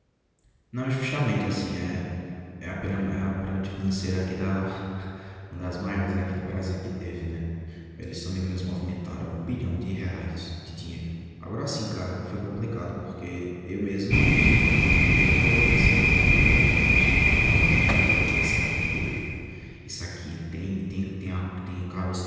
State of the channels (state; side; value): identical; both; correlation 1.00